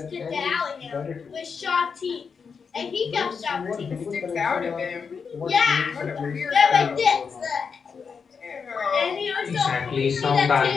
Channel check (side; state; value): right; quieter; 5.8 dB